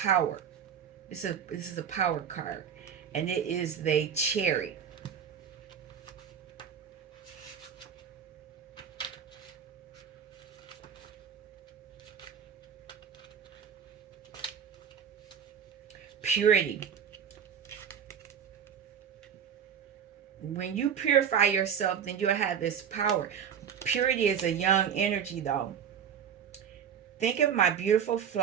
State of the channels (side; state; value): left; quieter; 7.9 dB